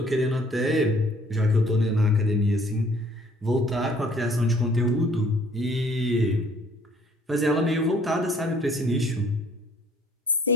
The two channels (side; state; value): both; normal; correlation 0.59